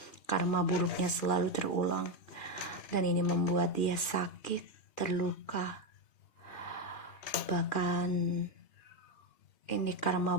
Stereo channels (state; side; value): late; right; 2.4 ms